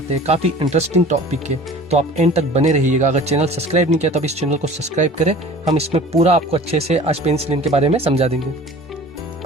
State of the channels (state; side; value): normal; both; correlation 0.43